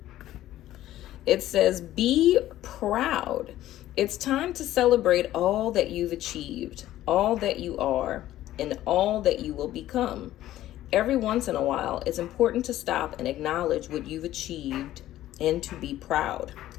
it says, be proud. It's time to celebrate all that you've achieved, all that you are, and all that you will become. Every once in a while, it's important to stop and acknowledge what you've achieved and to be proud.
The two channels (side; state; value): right; quieter; 13.9 dB